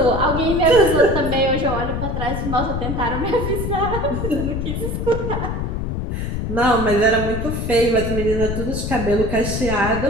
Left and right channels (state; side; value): noise; left; rumble, 3 dB below the sound